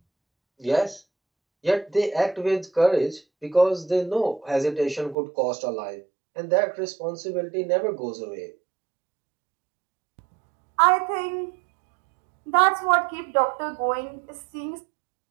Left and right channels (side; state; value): left; drops out; at 5.2 s